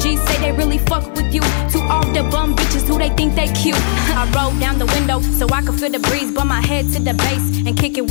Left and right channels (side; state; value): right; silent; digital silence